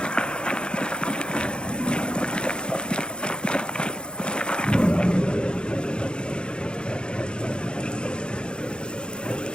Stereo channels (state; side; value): late; right; 0.051 ms